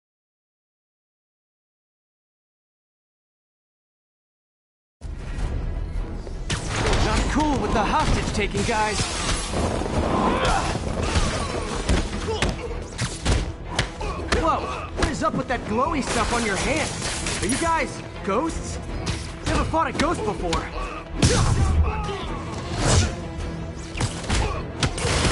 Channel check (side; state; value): both; identical; correlation 1.00